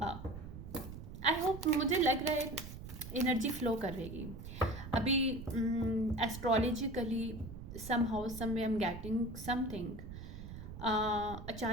I hope, मुझे लग रहा है energy flow करेगी अभी। Astrologically somehow some way am getting something.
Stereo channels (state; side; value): noise; right; rumble, 11 dB below the sound